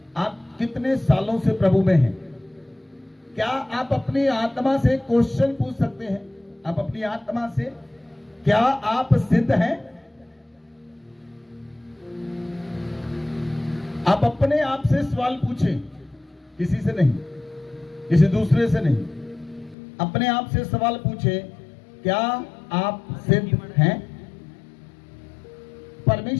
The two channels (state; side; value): drops out; right; at 19.8 s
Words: आप कितने सालों से प्रभु में हैं? क्या आप अपनी आत्मा से क्वेश्चन पूछ सकते हैं? आप अपनी आत्मा से, क्या आप सिद्ध हैं? आप अपने आप से सवाल पूछें, किसी से नहीं, किसी दूसरे से नहीं। अपने आप से सवाल पूछें, क्या आप सिद्ध हैं?